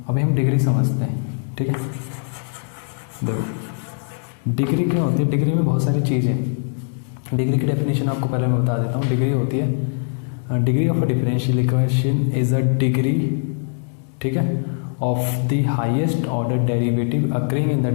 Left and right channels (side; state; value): right; silent; digital silence